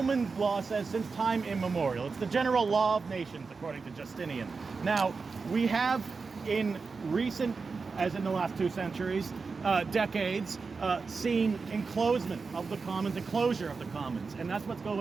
law says, since time immemorial. It's the general law of nations, according to Justinian. Now, we have in recent, as in the last 2 centuries, decades, seen enclosement of the commons, enclosure of the commons, and that's what's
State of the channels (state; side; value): quieter; left; 4.6 dB